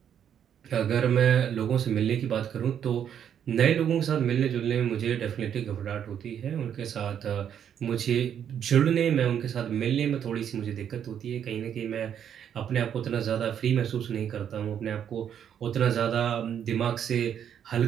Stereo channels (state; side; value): quieter; left; 9.0 dB